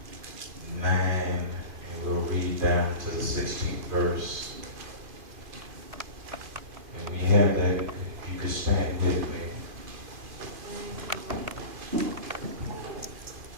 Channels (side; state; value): left; late; 2.4 ms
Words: 9, and we'll read down to the 16th verse. And we have that, if you could stand with me.